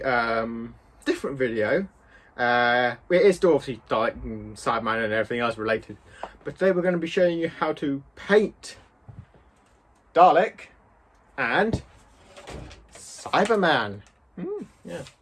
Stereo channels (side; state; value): both; identical; correlation 1.00